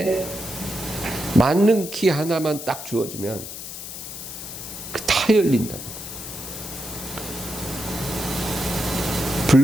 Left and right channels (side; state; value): left; noise; hiss, 10 dB below the sound